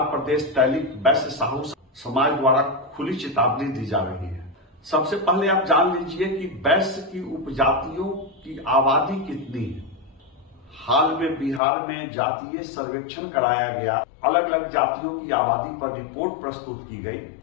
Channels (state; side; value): drops out; right; at 11.6 s